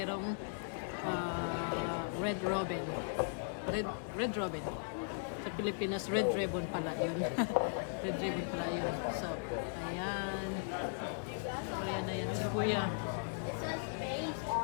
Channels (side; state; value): right; silent; digital silence